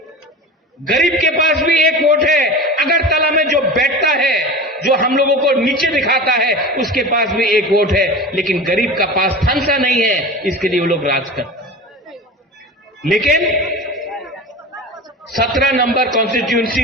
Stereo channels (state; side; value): normal; both; correlation 0.32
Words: गरीब के पास भी एक वोट है। अगरतला में जो बैठता है, जो हम लोगों को नीचे दिखाता है, उसके पास भी एक वोट है। लेकिन गरीब का पास थानसा नहीं है, इसके लिए वो लोग राज करते हैं। लेकिन 17 नंबर